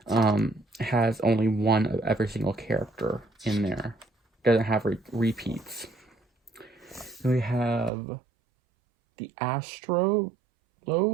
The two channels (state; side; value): drops out; left; at 7.9 s